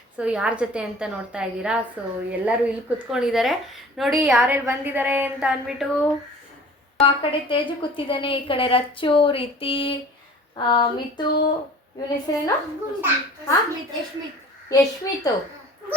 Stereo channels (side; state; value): both; normal; correlation 0.46